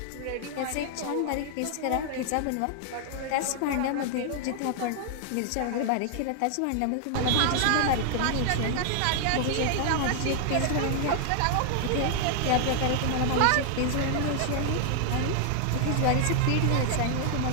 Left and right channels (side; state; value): both; different; correlation 0.00